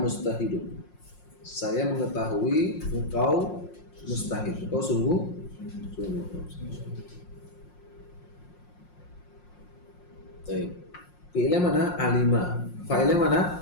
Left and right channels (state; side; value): late; right; 5.6 ms